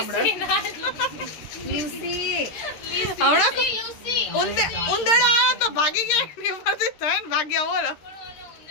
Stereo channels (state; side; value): late; right; 13 ms